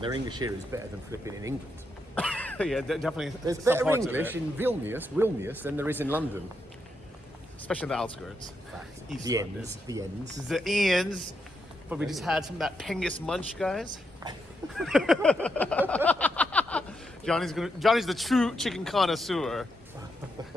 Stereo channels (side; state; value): both; normal; correlation 0.82